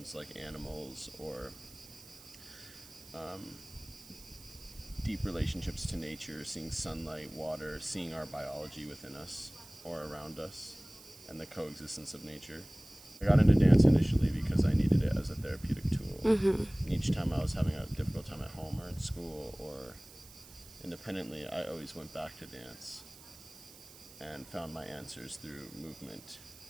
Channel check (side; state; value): right; noise; hiss, 19 dB below the sound